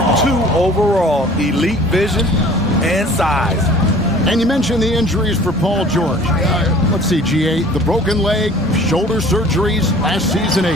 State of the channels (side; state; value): both; normal; correlation 0.48